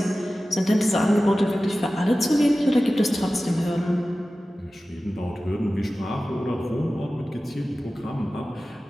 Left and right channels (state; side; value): normal; both; correlation 0.96